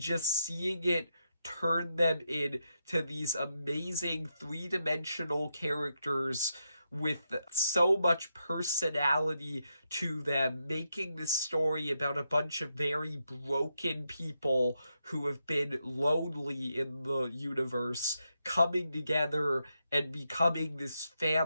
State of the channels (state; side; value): inverted; both; correlation -0.83